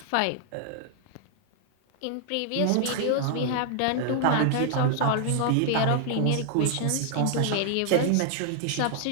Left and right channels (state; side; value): different; both; correlation 0.00